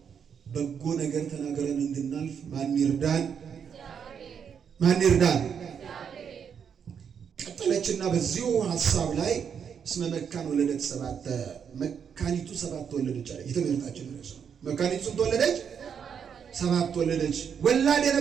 በጎ ነገር ተናገረን እንድናልፍ ማን ይርዳን? ማን ይርዳን? ቀጠለችና በዚሁ ሐሳብ ላይ እስመ መካን ወለደት ሰባተ፣ መካኒቱ 7 ወለደች አለ። የትምህርታችን ርዕስ ነው። መካኒቱ ስንት ወለደች? 7 ወለደች። ወላድ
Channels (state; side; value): quieter; left; 7.4 dB